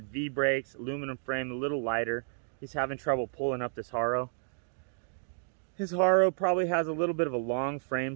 V brakes, aluminum frame, a little lighter. He's having trouble pulling up this Haro. His Haro probably has a little bit of a long frame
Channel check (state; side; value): silent; left; digital silence